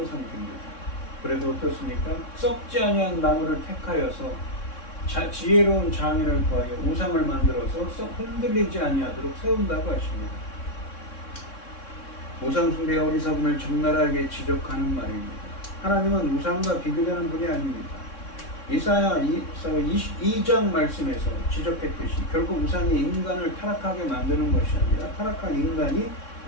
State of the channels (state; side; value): late; right; 3.6 ms